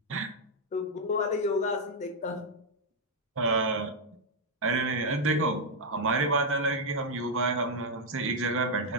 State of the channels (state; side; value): normal; both; correlation -0.02